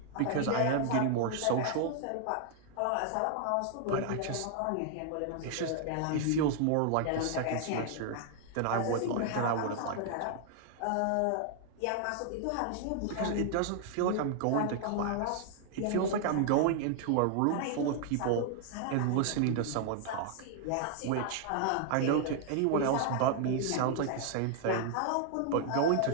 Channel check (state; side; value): different; both; correlation 0.00